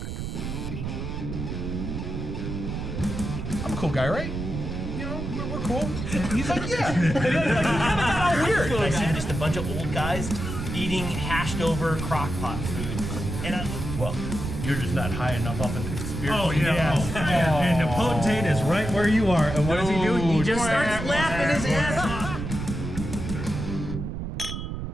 I'm a cool guy, right? You know, we're cool. He's like, yeah. He's all weird. I see just a bunch of old guys eating hashed over crock pot food. And well, you're just not high enough up in the conspiracy. Oh, yeah. And the potentate is right where you are. And what does he do? He just starts laughing his ass off.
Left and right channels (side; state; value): right; noise; rumble, 5 dB below the sound